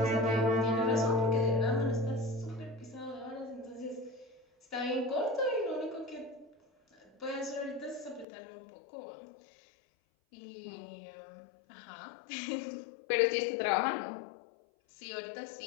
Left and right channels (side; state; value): right; drops out; at 8.2 s